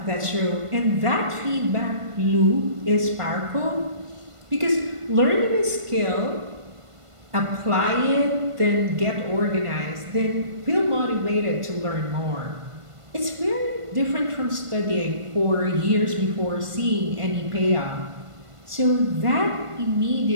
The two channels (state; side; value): late; left; 1.5 ms